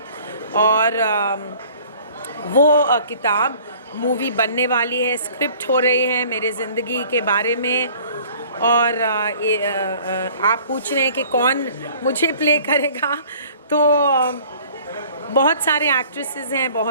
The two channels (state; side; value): inverted; both; correlation -0.51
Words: और वो किताब मूवी बनने वाली है, स्क्रिप्ट हो रही है मेरे ज़िंदगी के बारे में। और आप पूछ रहे हैं कि कौन मुझे प्ले करेगा, तो बहुत सारे एक्ट्रेसेस हैं,